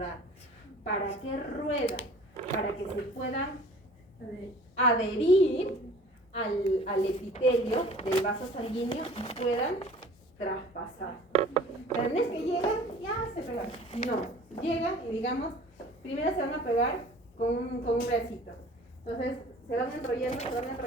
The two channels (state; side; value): normal; both; correlation 0.47